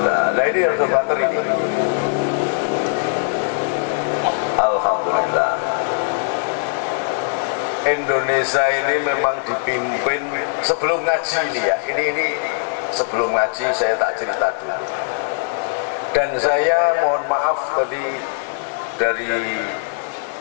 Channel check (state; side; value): silent; right; digital silence